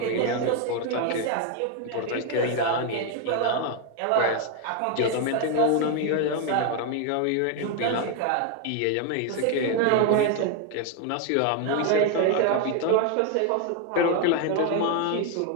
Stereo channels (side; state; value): both; different; correlation 0.01